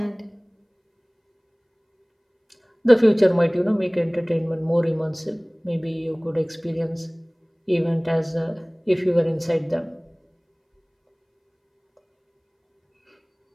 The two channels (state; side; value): identical; both; correlation 1.00